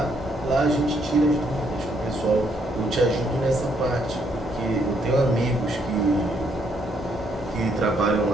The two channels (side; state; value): both; normal; correlation 0.71